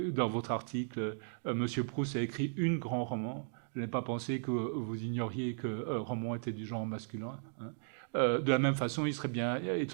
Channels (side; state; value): left; silent; digital silence